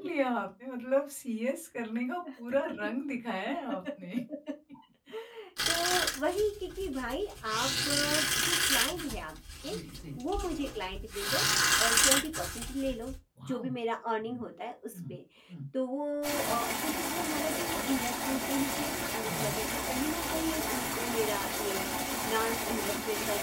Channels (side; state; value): both; identical; correlation 1.00